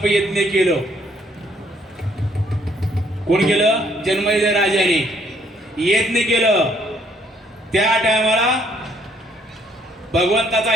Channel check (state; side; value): normal; both; correlation 0.66